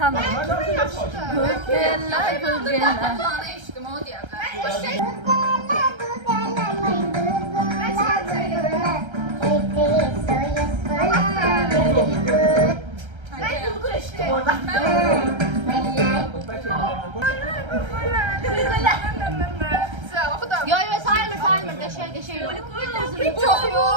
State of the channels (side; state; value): left; late; 1.3 ms